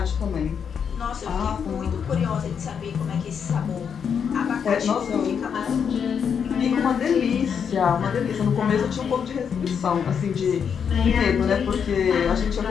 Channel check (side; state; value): right; quieter; 7.2 dB